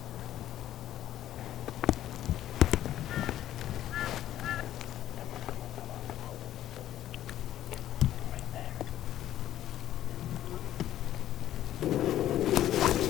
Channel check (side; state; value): right; quieter; 12.6 dB